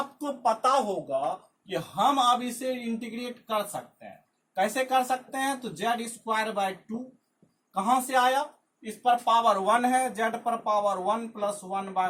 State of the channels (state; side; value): identical; both; correlation 1.00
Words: पता होगा कि हम अब इसे इंटीग्रेट कर सकते हैं। कैसे कर सकते हैं, तो z स्क्वायर बाय 2 कहां से आया, इस पर पावर 1 है, z पर power 1 plus 1 by